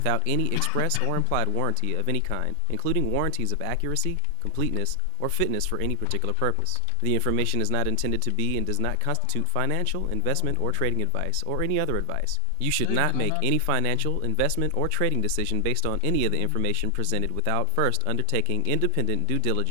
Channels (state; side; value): different; both; correlation 0.00